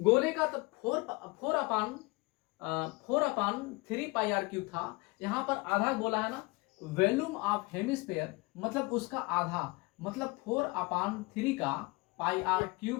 का तो 4/3 पाई आर क्यूब था, यहाँ पर आधा गोला है ना। वॉल्यूम ऑफ हेमिस्फीयर मतलब उसका आधा, मतलब 4/3 का पाई आर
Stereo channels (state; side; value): quieter; right; 25.0 dB